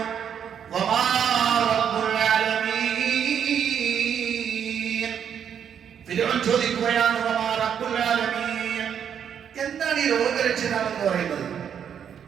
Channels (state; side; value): quieter; left; 8.3 dB